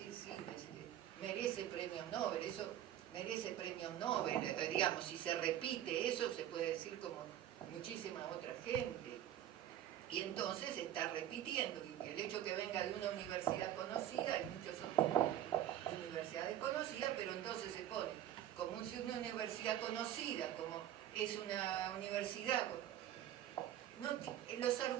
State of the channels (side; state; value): left; quieter; 11.6 dB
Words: sí, merece premios Nobel, eso merece premios Nobel, digamos, si se repite eso, se puede decir como muchísima otra gente. Y entonces se está repitiendo, y el hecho que venga de una universidad conocida, hay muchas otras universidades conocidas, pero entonces se pone como si una universidad conocida, como es una universidad... No, los